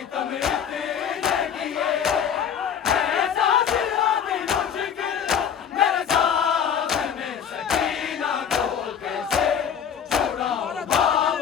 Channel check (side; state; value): right; quieter; 8.0 dB